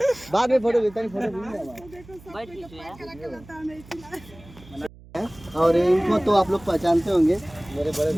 बाद में फोटो लेता फोटो और इनको तो आप लोग पहचानते होंगे मेरे बड़े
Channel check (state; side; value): noise; right; hum, 21 dB below the sound